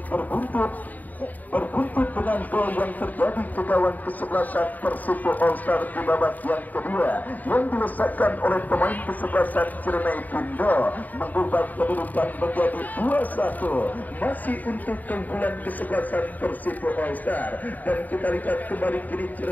berbuntut dengan gol yang terjadi ke gawang kesebelasan Persipo All Star di babak yang kedua, yang dilesakkan oleh pemain kesebelasan Ciremai Pindo, mengubah kedudukan menjadi 2-1 masih untuk keunggulan kesebelasan Persipo All Star. Dan kita lihat kembali kini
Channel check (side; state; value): right; late; 0.081 ms